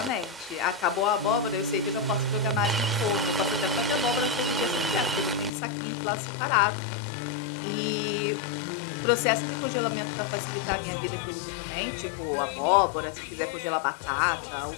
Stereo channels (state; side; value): drops out; right; at 5.5 s